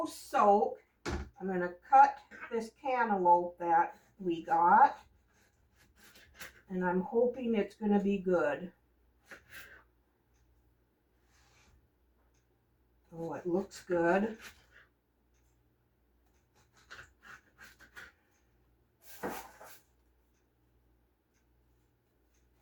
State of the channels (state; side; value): identical; both; correlation 1.00